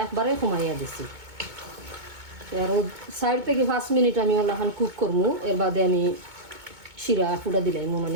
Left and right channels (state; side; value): late; left; 2.2 ms